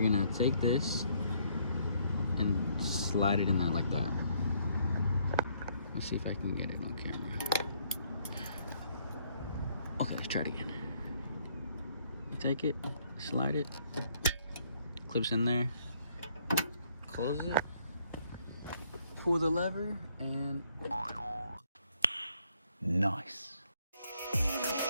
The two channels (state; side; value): inverted; both; correlation -0.68